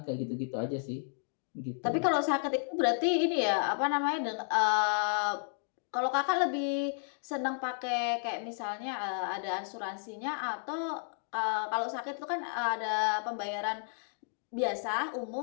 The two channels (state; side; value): silent; right; digital silence